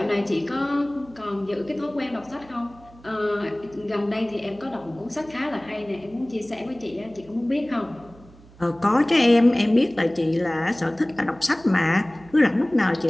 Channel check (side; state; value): right; noise; hum, 24 dB below the sound